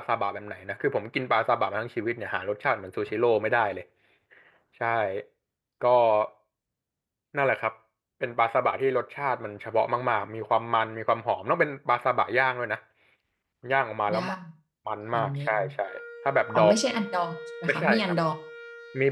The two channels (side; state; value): both; identical; correlation 1.00